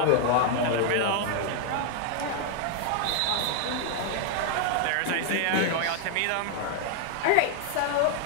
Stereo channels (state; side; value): different; both; correlation 0.00